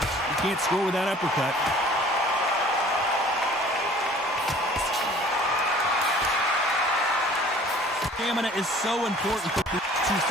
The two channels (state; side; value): normal; both; correlation 0.50